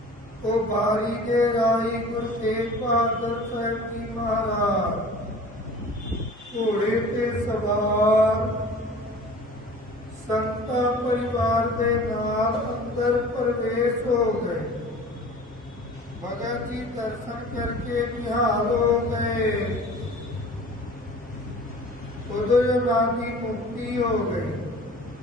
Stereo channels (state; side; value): normal; both; correlation 0.43